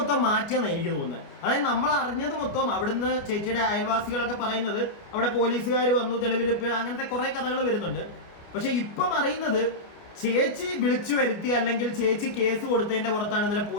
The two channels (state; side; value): late; right; 29 ms